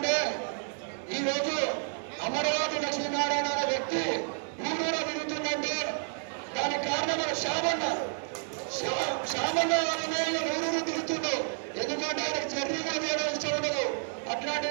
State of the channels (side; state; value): left; silent; 58 dB below the other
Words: ఈరోజు అమరావతి లక్ష్మీనారాయణ అనే వ్యక్తి ఊరూరా తిరుగుతుందంటే దానికి కారణం మన శ్యామన్న ఊరూరు తిరుగుతుండు. ఎందుకంటే ఆయనకు జర్నీ కూడా చేయడం ఇష్టం ఉండదు.